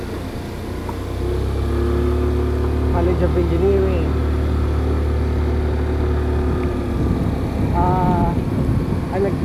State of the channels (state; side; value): identical; both; correlation 1.00